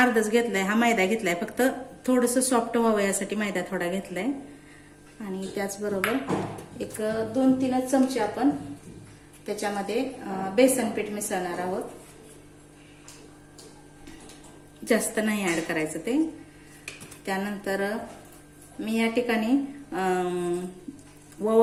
घेतलाय, हा मैदा घेतलाय, फक्त थोडंसं सॉफ्ट व्हावं यासाठी मैदा थोडा घेतलाय। आणि त्याचबरोबर एक 2-3 चमचे आपण त्याच्यामध्ये बेसन पीठ मिसळणार आहोत, जास्त नाही ऍड करायचं ते। त्यानंतर मी या ठिकाणी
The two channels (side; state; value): both; identical; correlation 1.00